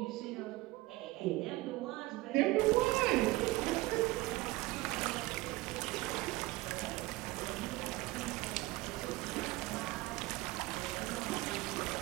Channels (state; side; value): quieter; left; 20.2 dB